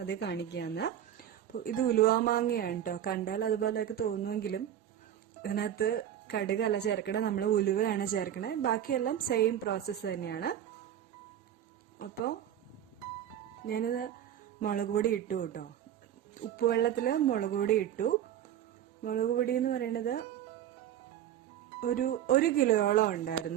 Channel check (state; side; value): quieter; left; 10.6 dB